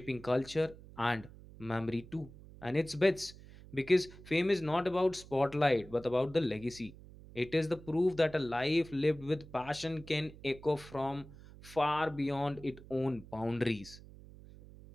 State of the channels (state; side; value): noise; right; hum, 18 dB below the sound